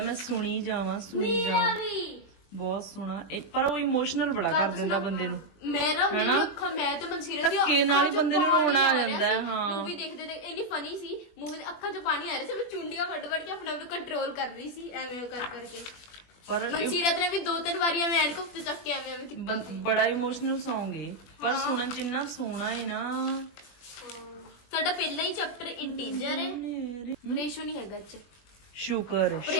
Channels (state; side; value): late; right; 21 ms